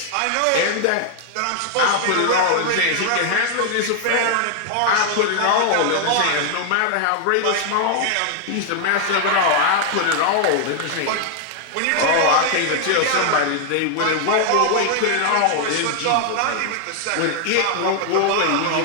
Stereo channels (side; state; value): both; different; correlation 0.00